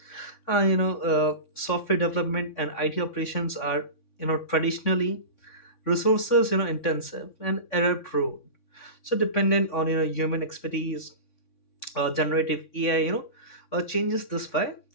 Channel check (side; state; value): right; late; 3.6 ms